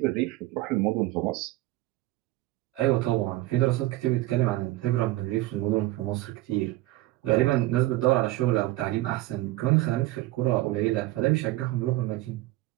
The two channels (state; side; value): quieter; left; 17.7 dB